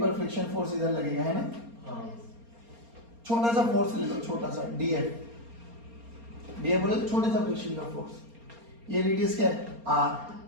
फ्रिक्शन फोर्स इधर लगेगा, है ना? हाँ छोटा सा फोर्स ले लो, छोटा सा डीएफ बोले तो छोटे सा फ्रिक्शन का फोर्स। ये रेडियस क्या है? आर।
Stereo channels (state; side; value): late; left; 4.3 ms